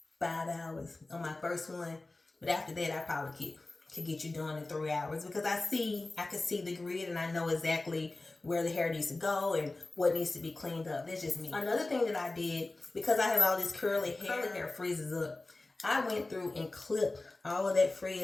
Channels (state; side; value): quieter; right; 3.1 dB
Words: 5 hours on my first one, but after that, I probably could get you done in 3 hours because I can see the grid and I know exactly where the hair needs to go and what needs to be cleaned up. That's just me. Another thing that I did, because I have all this curly hair freezes up, I went through and clipped all of that